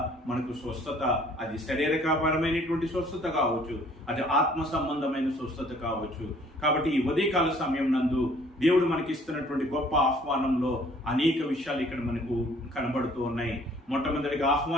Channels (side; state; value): both; normal; correlation 0.57